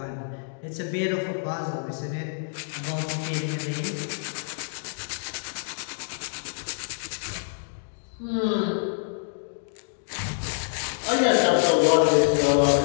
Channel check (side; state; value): right; silent; digital silence